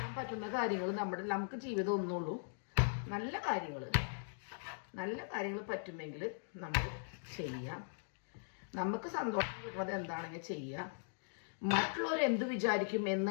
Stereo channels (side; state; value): right; silent; digital silence